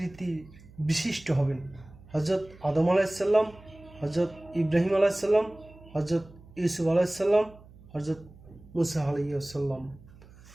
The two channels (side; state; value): right; noise; hum, 22 dB below the sound